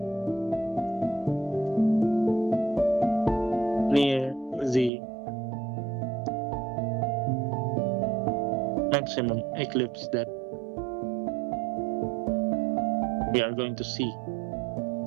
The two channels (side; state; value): left; drops out; at 4.9 s